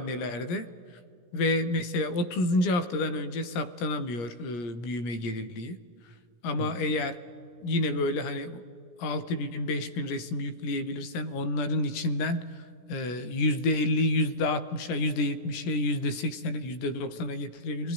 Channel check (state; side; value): late; right; 17 ms